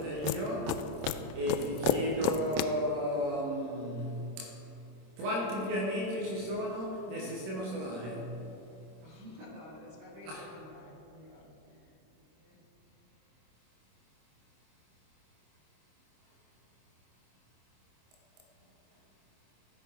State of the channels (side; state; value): left; late; 26 ms